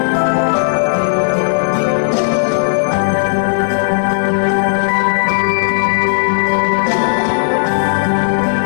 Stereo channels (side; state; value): right; silent; digital silence